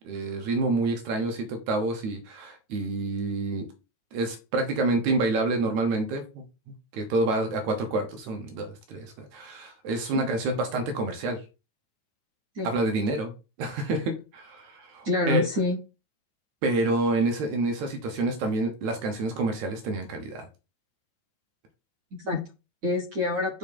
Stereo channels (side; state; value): left; late; 9.3 ms